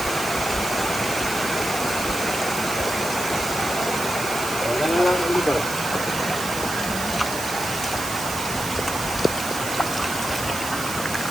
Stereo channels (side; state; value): right; noise; hiss, 8 dB below the sound